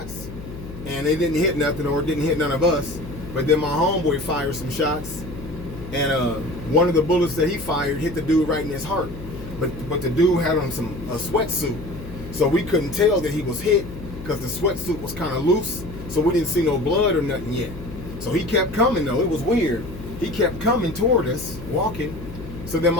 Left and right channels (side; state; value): left; noise; hum, 12 dB below the sound